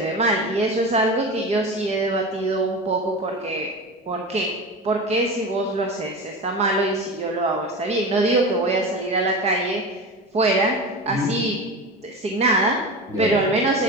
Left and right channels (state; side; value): normal; both; correlation 0.27